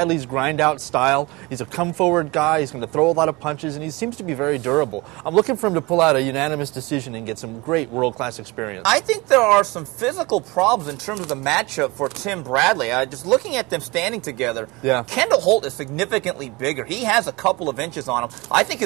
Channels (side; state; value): left; quieter; 24.2 dB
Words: grind-out style. He's a come-forward guy. He's going to throw a lot of punches, and he seems to be very durable. I'm looking for him to pull out a unanimous decision and get some great world-class experience. I think there are some physical problems in terms of the matchup for Tim Bradley. Just looking at them standing together, Kendall Holt is significantly bigger. He has a couple of inches on him. I think